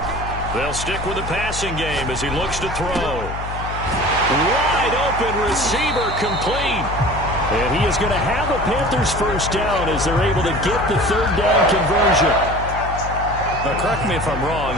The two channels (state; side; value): noise; left; hum, 8 dB below the sound